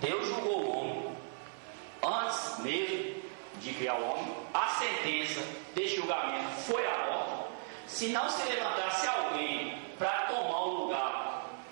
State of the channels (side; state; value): left; silent; 54 dB below the other